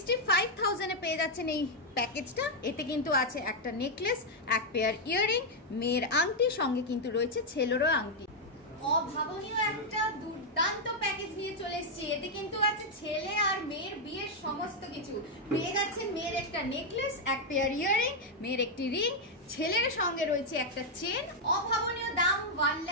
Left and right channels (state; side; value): normal; both; correlation -0.01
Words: এ পেয়ে যাচ্ছেন এই প্যাকেজটা। এতে কিন্তু আছে একটা নেকলেস, এক পেয়ার ইয়াররিং, মেয়ের আংটি, সঙ্গে কিন্তু রয়েছে ছেলেরও আংটি। অভাবনীয় একটা দুর্দান্ত প্যাকেজ নিয়ে চলে এসেছি। এতে কিন্তু আছে ছেলে আর মেয়ের বিয়ের সমস্ত কিছু। পেয়ে যাচ্ছেন মেয়ের একটা নেকলেস, এক পেয়ার ইয়াররিং, মেয়ের একটি রিং, ছেলের সঙ্গে রয়েছে একটা চেন। অভাবনীয় দাম